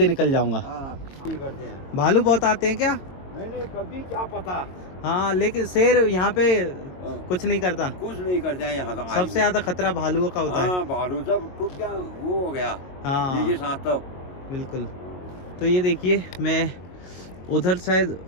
निकल जाऊंगा। हाँ, ठीक करते हैं। भालू बहुत आते हैं क्या? नहीं, कभी क्या पता। हाँ, लेकिन शेर यहाँ पे कुछ नहीं करता। कुछ नहीं करते हैं यहाँ तो। सबसे ज्यादा खतरा भालुओं का होता है। हाँ, भालू सब टूट गया, वो हो गया। हाँ ये साथ तब बिल्कुल। तो ये देखिए, मैं उधर शायद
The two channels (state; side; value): late; right; 22 ms